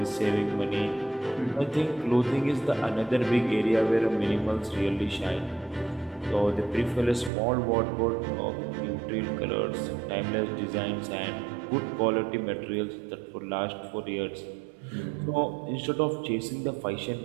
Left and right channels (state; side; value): drops out; left; at 7.3 s